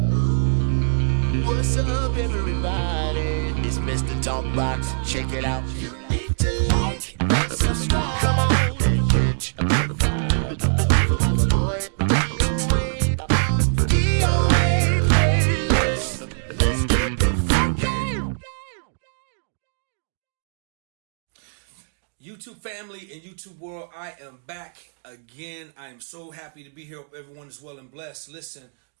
up, everybody? It's Mr. Talkbox. Check it out. You need to like, subscribe, come on, and catch a motherfucker. Boy, DOA playlist. Let's get the funky. YouTube family and YouTube world, I am back again. I am so happy to be here. Hope everyone is well and blessed. Listen,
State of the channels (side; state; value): left; silent; digital silence